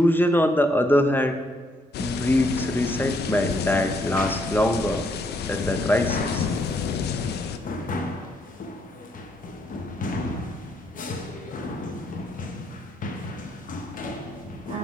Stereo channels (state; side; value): normal; both; correlation 0.73